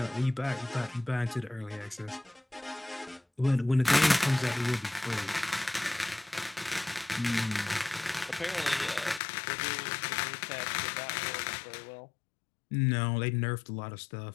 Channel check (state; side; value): drops out; right; at 9.2 s